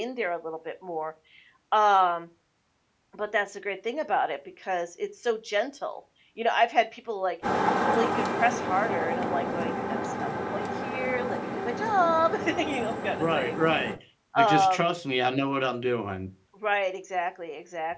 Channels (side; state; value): both; identical; correlation 1.00